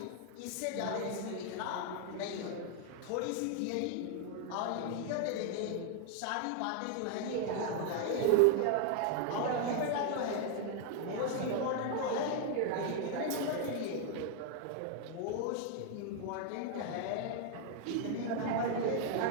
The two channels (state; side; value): different; both; correlation 0.00